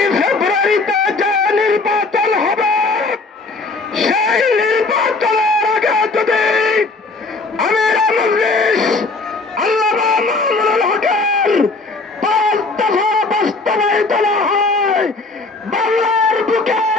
ফেব্রুয়ারিতে যে নির্বাচন হবে সেই নির্বাচনের আগে যদি আমির মজলিস আল্লামা মামুনুল হকের 5 দফা বাস্তবায়িত না হয়, বাংলার বুকে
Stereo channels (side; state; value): right; quieter; 3.6 dB